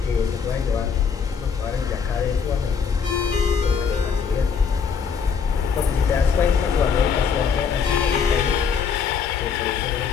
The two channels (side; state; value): right; quieter; 6.3 dB